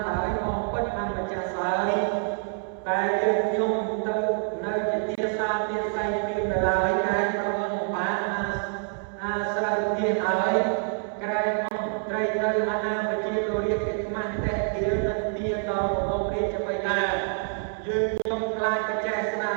ហើយមកពិតអម្ចាស់ស្រីតែយើងខ្ញុំទៅនៅជាទាសាទាស័យពីនៅឡើយក្រែងប្រងបានអាស្រ័យទានហើយក្រែងអង្គត្រីនៅអាណាប្រជាលោករាជកិច្ចមាស់តែទាននឹងទានដល់របស់រាជបិតាយើងខ្ញុំខ្លាចបច្ចេស្នា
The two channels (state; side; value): silent; left; 60 dB below the other